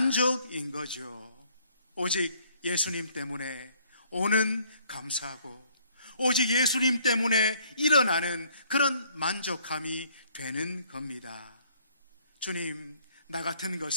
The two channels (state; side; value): inverted; both; correlation -0.63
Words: 거죠. 오직 예수님 때문에 오는 감사고, 오직 예수님 때문에 일어나는 그런 만족함이 되는 겁니다. 주님, 나 같은